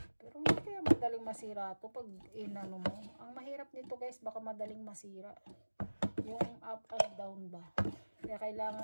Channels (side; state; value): both; inverted; correlation -1.00